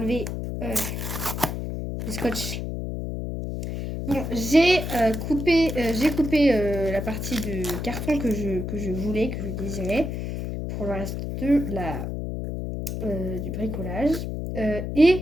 le scotch. Bon, j'ai coupé la partie de carton que je voulais, que je désirais, pour le reste du bricolage.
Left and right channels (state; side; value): noise; left; hum, 4 dB below the sound